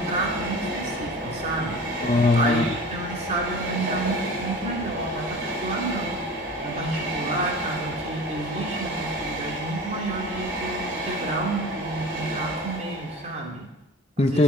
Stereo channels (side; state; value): both; normal; correlation 0.37